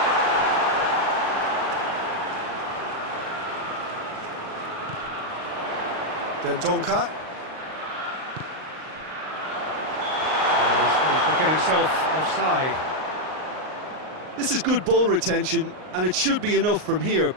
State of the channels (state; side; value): late; left; 38 ms